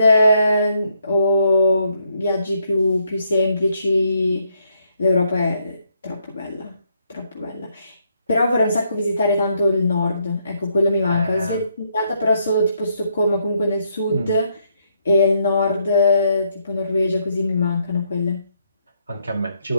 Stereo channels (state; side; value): inverted; both; correlation -0.75